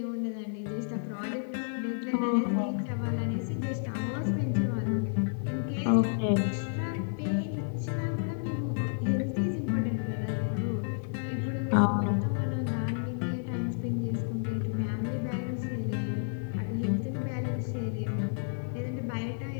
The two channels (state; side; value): silent; right; 57 dB below the other